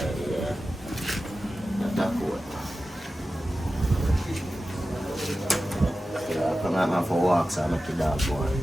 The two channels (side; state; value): both; normal; correlation 0.94